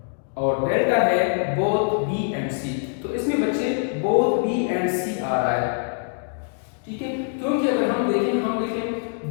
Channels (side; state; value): right; silent; digital silence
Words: और डेल्टा है बोथ बी एंड सी। तो इसमें बच्चे बोथ बी एंड सी आ रहा है, ठीक है, क्योंकि अगर हम देखें द